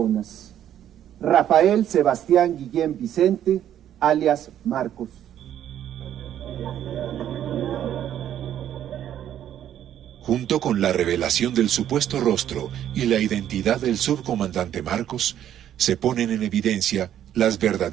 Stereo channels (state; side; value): quieter; left; 10.8 dB